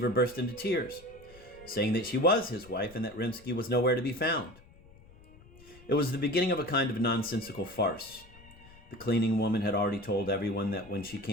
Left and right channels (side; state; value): left; noise; rumble, 23 dB below the sound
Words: burst into tears, saying that she was his wife and that Rimsky was nowhere to be found. It was the beginning of a kind of nonsensical farce. The cleaning woman had already told everyone that when she